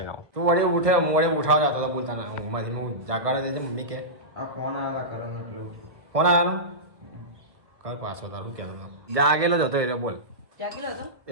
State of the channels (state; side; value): late; left; 1.4 ms